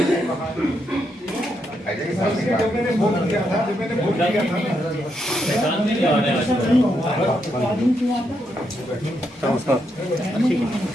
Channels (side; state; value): both; normal; correlation 0.80